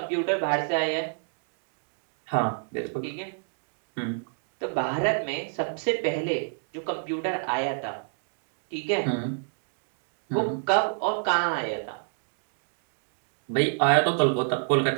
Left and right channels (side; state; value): left; silent; digital silence